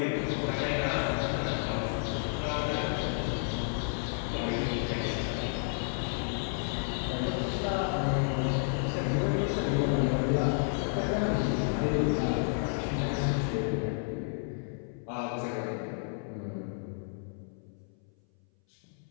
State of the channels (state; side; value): silent; right; 57 dB below the other